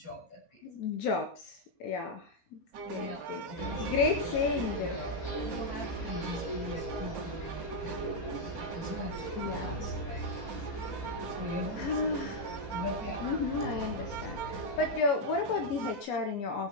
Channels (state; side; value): late; right; 4.3 ms